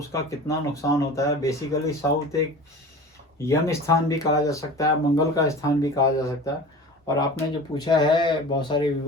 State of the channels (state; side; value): normal; both; correlation 0.37